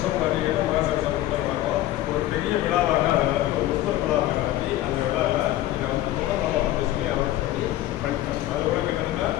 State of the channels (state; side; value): quieter; right; 14.7 dB